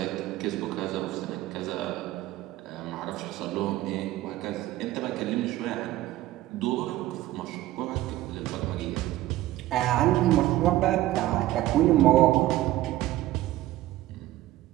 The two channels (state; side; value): quieter; left; 15.4 dB